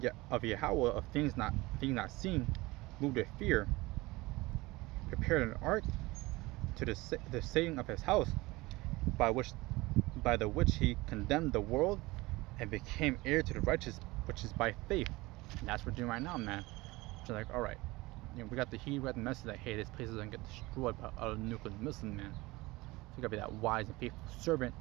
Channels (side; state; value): left; quieter; 21.3 dB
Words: of things not seen, moved with fear, prepared an ark to the saving of his house, by the which he condemned the world and became heir to the righteous, which is by faith. And that's what we're doing right now, man. So like, all right, we got the message that hey, this place doesn't get destroyed by a nuclear missile, man. So you gotta be that wise and faithful servant